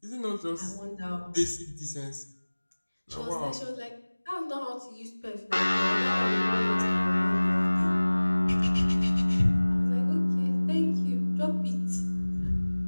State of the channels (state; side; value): inverted; both; correlation -1.00